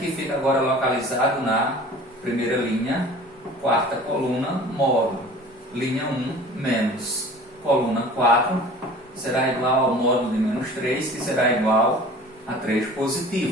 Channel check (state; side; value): normal; both; correlation 0.43